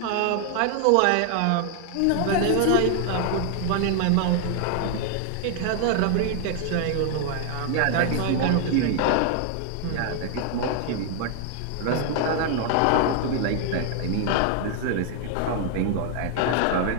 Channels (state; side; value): different; both; correlation 0.00